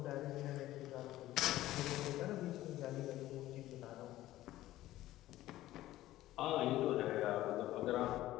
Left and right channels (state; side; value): quieter; right; 15.2 dB